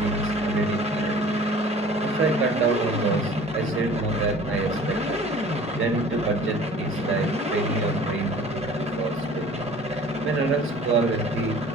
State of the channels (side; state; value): both; normal; correlation 0.47